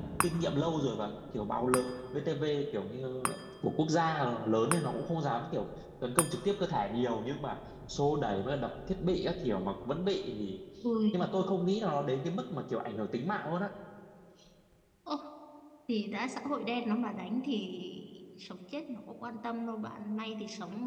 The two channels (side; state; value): both; identical; correlation 1.00